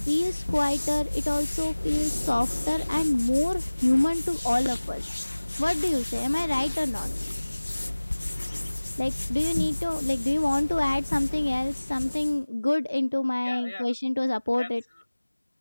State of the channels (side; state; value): both; inverted; correlation -1.00